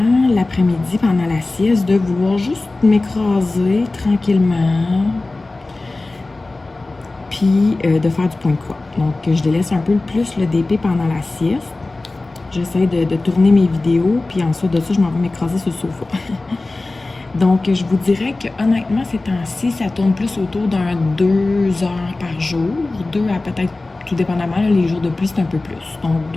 l'après-midi pendant la sieste de vouloir juste m'écraser tranquillement, puis de faire du point de croix. Donc, je délaisse un peu plus le DP pendant la sieste. J'essaie de tourner mes vidéos, puis ensuite de ça, je m'en vais m'écraser sur le sofa. Donc, je vous dirais que honnêtement, ces temps-ci, ça tourne plus autour d'un 2 heures par jour, 2 à peut-être, tout dépendamment, là, les jours de pluie, c'est un peu plus. Donc,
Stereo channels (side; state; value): right; quieter; 3.1 dB